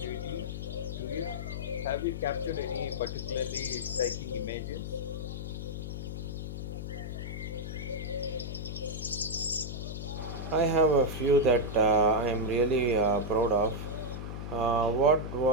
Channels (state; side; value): noise; left; hum, 6 dB below the sound